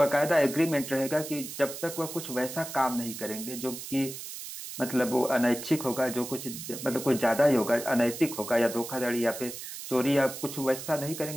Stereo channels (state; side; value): noise; right; hiss, 9 dB below the sound